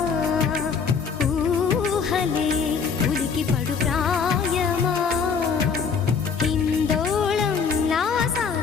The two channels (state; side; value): quieter; right; 5.9 dB